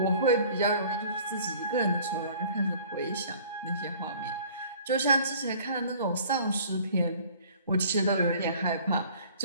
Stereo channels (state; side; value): inverted; both; correlation -0.51